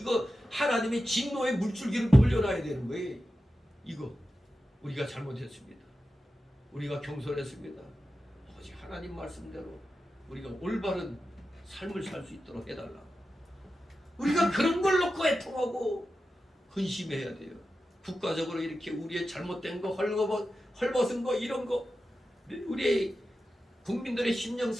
하나님의 진노의 물줄기를 돌려놔야 되는 거예요. 이거 우리가 잘못했습니다. 우리가 경솔했습니다. 오직 하나님 말씀대로 우리가 올바른 삶을 살 수 있도록 해달라. 우리가 그런 걸 놓고 애통하고 근심해야 돼요. 국가적으로 이렇게 우리의 잘못된 거, 헐벗은 거, 이런 거, 우리의 국민들의 심령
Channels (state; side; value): normal; both; correlation 0.92